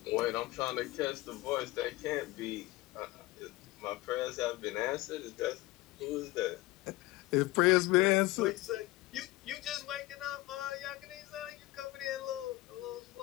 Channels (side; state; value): right; quieter; 19.1 dB